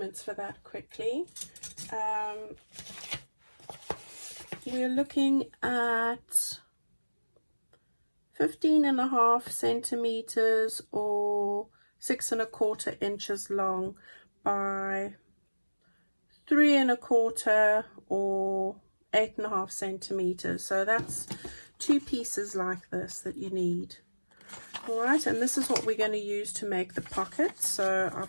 for that quickly. We're looking at 15.5 centimeters or 6.25 inches long by 3.25 or 8.5 centimeters. So that's 2 pieces like this that you need. All right, and this is what we're going to use to make the pockets. So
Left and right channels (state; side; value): inverted; both; correlation -1.00